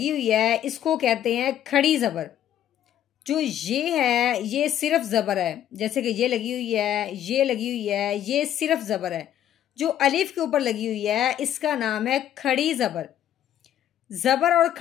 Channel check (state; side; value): quieter; right; 11.0 dB